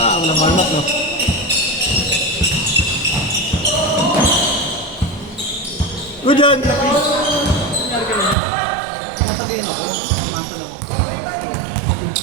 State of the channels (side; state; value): left; drops out; at 8.3 s